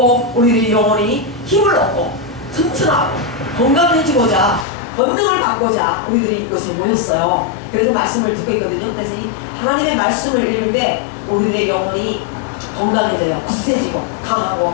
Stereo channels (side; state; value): right; drops out; at 4.7 s